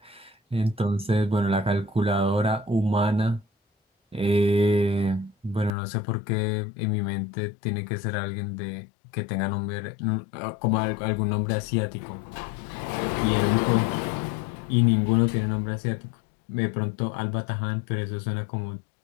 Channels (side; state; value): right; drops out; at 5.7 s